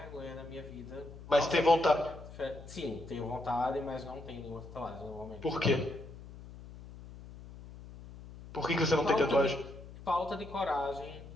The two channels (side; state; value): left; noise; hum, 15 dB below the sound